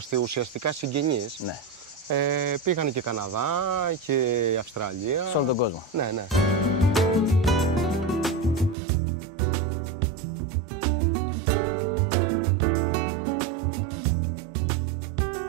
ουσιαστικά συγγενείς. Ναι. Πήγανε και Καναδά και Αυστραλία. Σε όλο τον κόσμο. Ναι, ναι.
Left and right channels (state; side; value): drops out; left; at 8.8 s